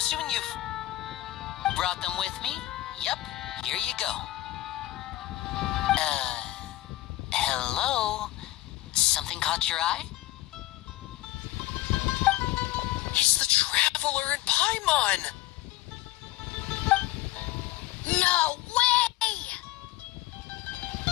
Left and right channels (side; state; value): right; quieter; 15.9 dB